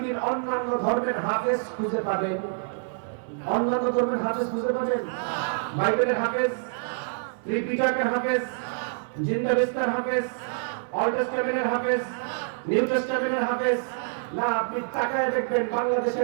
অন্যান্য ধর্মের হাফেজ খুঁজে পাবেন, অন্যান্য ধর্মের হাফেজ খুঁজে পাবেন? বাইবেলের হাফেজ, ত্রিপিটকের হাফেজ, জিন্দাবিস্তার হাফেজ, অল টেস্টামেন্টের হাফেজ, নিউ টেস্টামেন্টের হাফেজ না। আপনি তাকায় দেখবেন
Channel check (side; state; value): left; silent; digital silence